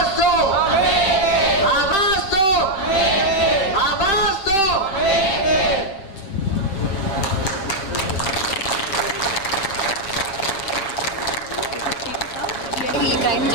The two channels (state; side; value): late; right; 7.6 ms